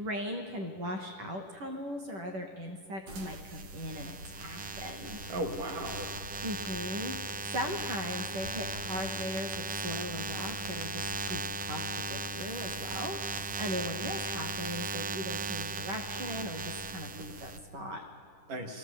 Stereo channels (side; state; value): left; late; 10 ms